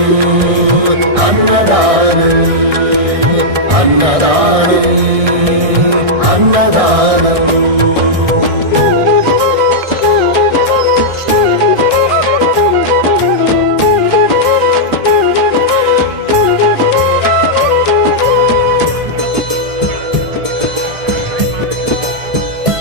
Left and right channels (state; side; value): late; left; 1.6 ms